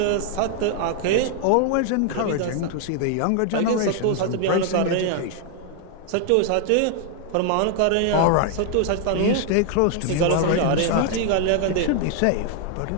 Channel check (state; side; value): different; both; correlation 0.00